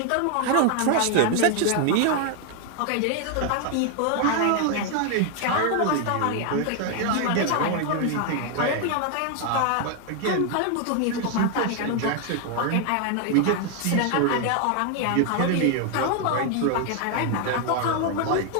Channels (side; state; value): both; different; correlation 0.00